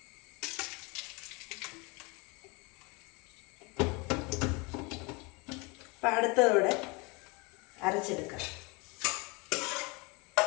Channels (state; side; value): quieter; right; 28.2 dB